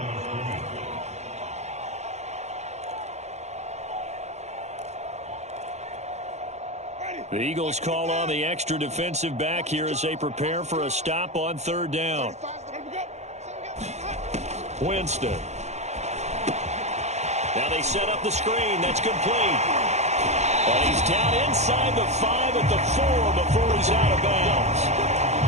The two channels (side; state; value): left; late; 0.33 ms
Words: The Eagles call on the extra defensive back here as they prepare for a stop on third down. Winston. Now they set up the screen. That's complete. And he's down inside the 5 at the 4 before he's out of bounds.